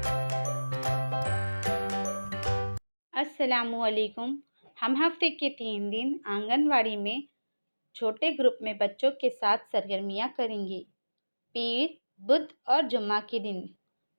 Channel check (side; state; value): both; inverted; correlation -1.00